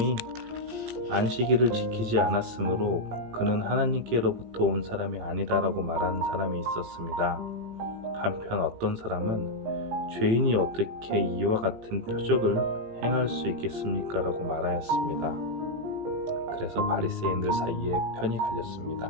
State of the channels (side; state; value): left; late; 18 ms